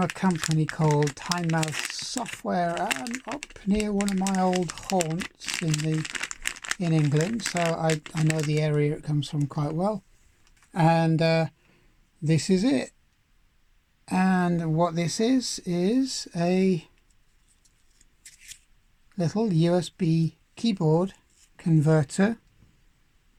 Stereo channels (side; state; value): both; identical; correlation 1.00